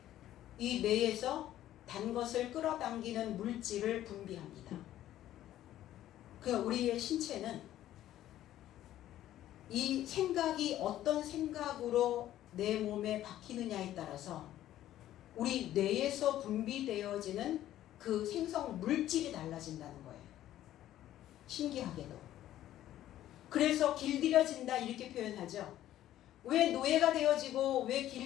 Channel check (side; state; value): right; quieter; 13.0 dB